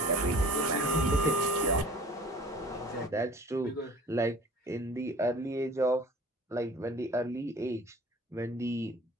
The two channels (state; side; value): normal; both; correlation 0.46